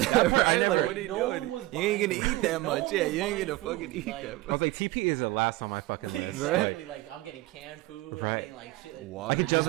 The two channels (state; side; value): quieter; left; 19.4 dB